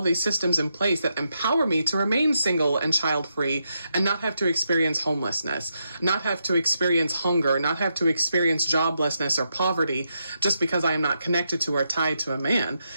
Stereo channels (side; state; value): both; inverted; correlation -0.82